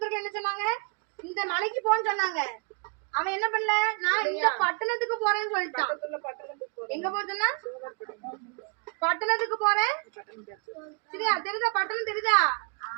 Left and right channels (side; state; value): left; quieter; 35.1 dB